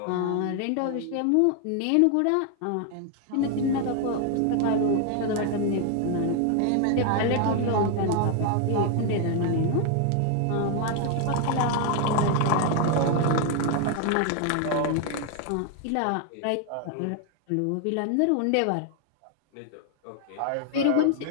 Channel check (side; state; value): both; different; correlation 0.00